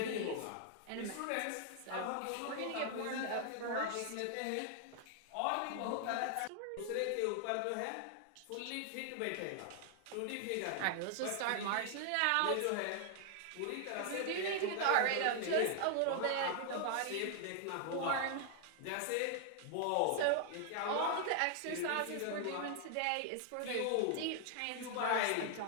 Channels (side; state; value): both; different; correlation 0.00